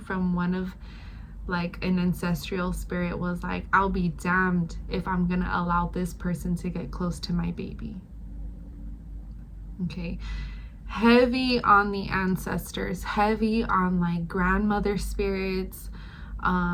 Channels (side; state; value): both; identical; correlation 1.00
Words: one of like an ancestral spirit was like, I'll be damned if I'm gonna allow this person to get close to my baby. Okay, heavy on the ancestors, heavy on like grandmother spirits,